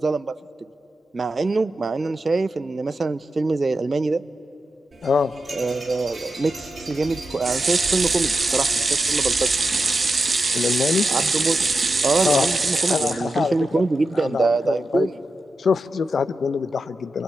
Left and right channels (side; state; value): both; normal; correlation 0.90